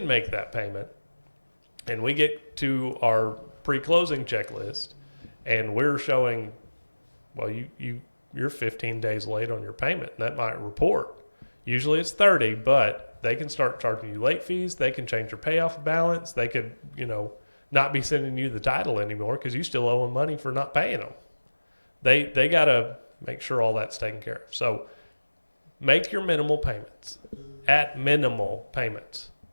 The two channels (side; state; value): both; inverted; correlation -1.00